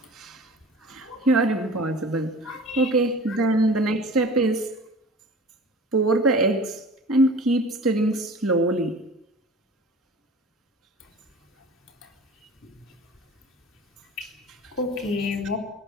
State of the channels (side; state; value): both; normal; correlation 0.41